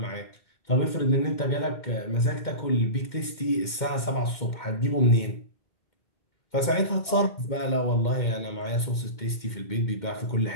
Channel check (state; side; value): late; right; 2.1 ms